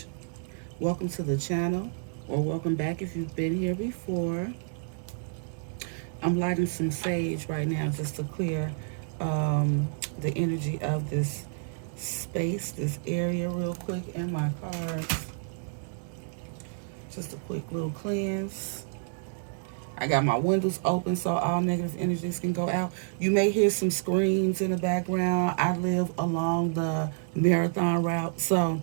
Welcome to the channel, or welcome back if you've been here before. I'm lighting some sage right now just to clear um, the energy of this space, this area, real quick, and my cards. Just a quick little cleanse. I got my windows open so all negative energies can go out. You may hear some screams in the background. I live along the marathon route, so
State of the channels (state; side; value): silent; left; digital silence